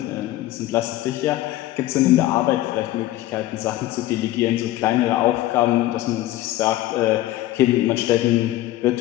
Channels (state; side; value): quieter; right; 15.5 dB